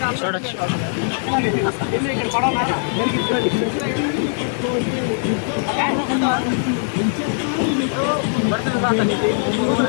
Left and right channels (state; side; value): silent; right; 65 dB below the other